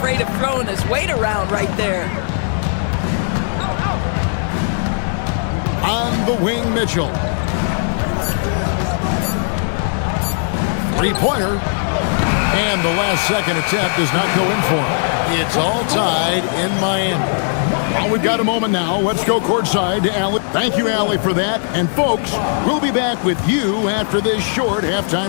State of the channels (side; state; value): right; silent; digital silence